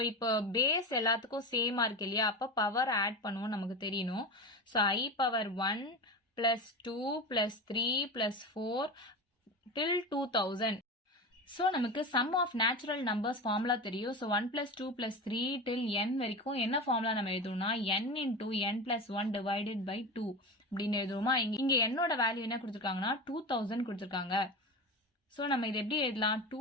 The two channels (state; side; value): normal; both; correlation 0.25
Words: இப்போ பேஸ் எல்லாத்துக்கும் சேமா இருக்கு இல்லையா, அப்ப பவர் ஆட் பண்ணுவோம் நமக்கு தெரியணும். So I power 1 plus 2 plus 3 plus 4 till 2000. So நமக்கு sum of natural numbers formula தெரியும். So 1 plus 2 plus 3 till n வரைக்கும் என்ன formula நம்ம எழுதுவோம்னா n into n plus 1 divided by 2 அப்படின்னு எழுதுவோமா. இங்க n ஓட வேல்யூ என்ன கொடுத்திருக்காங்கன்னா 2000 கொடுத்திருக்காங்க. So நம்ம இது எப்படி எழுதலாம்,